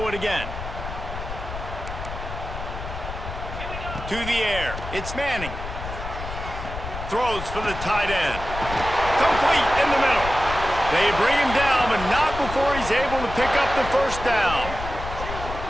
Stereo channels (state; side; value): noise; left; rumble, 8 dB below the sound